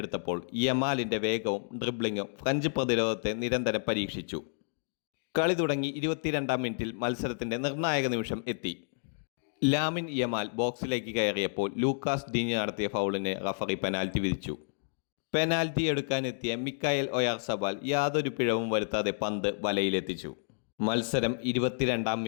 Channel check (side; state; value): right; silent; digital silence